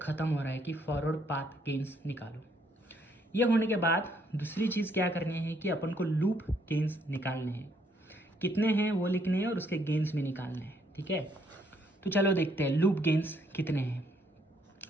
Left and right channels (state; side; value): normal; both; correlation 0.69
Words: हो रहा है कि फॉरवर्ड पाथ गेन्स निकालो। ये होने के बाद दूसरी चीज़ क्या करनी है कि अपन को लूप गेन्स निकालने हैं। कितने हैं वो लिखने हैं और उसके गेन्स भी निकालने हैं। ठीक है, तो चलो देखते हैं लूप गेन्स कितने हैं।